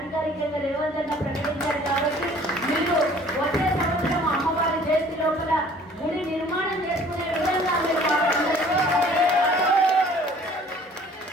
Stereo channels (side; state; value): both; normal; correlation 0.53